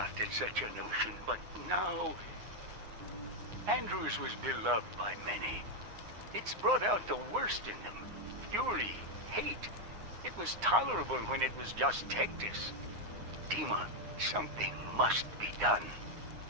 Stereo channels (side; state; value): left; late; 9.7 ms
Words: at such a notion, but now... Andrews was beloved by many. It's brought out the worst in them. Fury, hate. It was tolerable when it was just Tectus. Dima, something must be done.